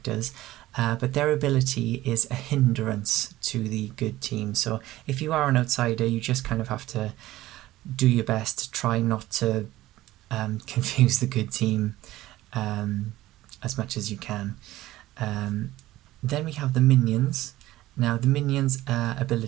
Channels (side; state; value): left; quieter; 16.2 dB